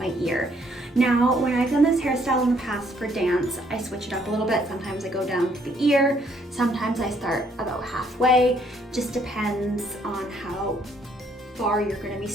ear. Now, when I've done this hairstyle in the past for dance, I switch it up a little bit. Sometimes I go down to the ear, sometimes I start about halfway. Just depends on how far you're going to be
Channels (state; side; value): normal; both; correlation 0.67